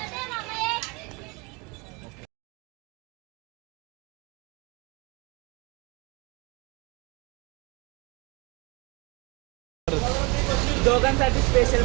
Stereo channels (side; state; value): left; quieter; 28.1 dB